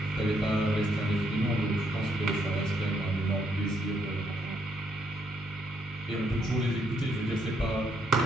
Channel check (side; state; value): both; normal; correlation 0.73